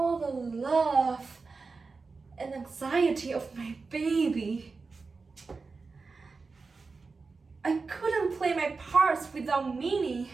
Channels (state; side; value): quieter; left; 4.3 dB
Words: the love and anxiety of my baby. I couldn't play my parts without meaning.